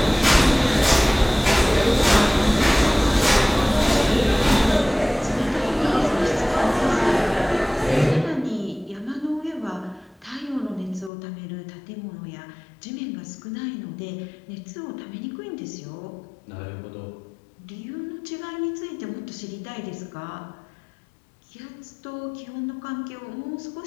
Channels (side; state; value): right; drops out; at 11.1 s